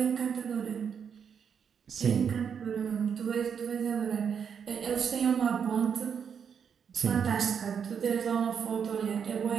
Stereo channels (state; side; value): quieter; left; 7.2 dB